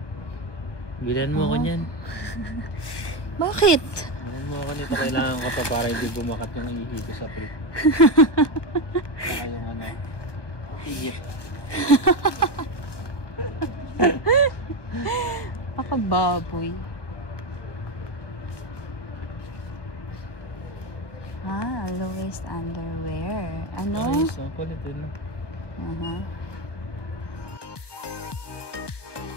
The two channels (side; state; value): right; late; 1.2 ms